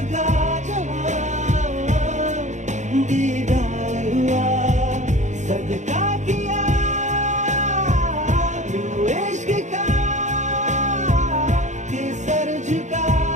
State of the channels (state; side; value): late; left; 0.35 ms